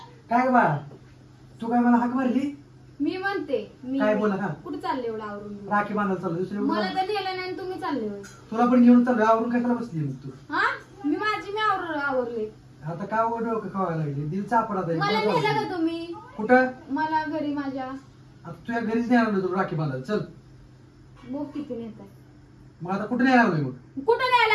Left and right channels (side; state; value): both; identical; correlation 1.00